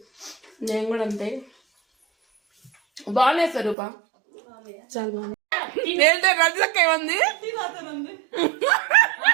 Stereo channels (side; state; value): left; drops out; at 3.8 s